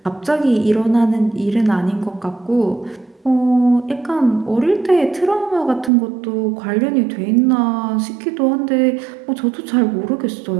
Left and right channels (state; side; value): drops out; left; at 5.9 s